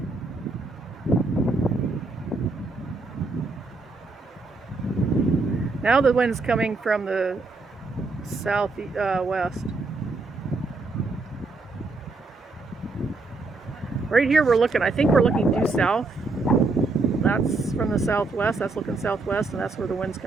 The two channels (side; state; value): left; quieter; 3.6 dB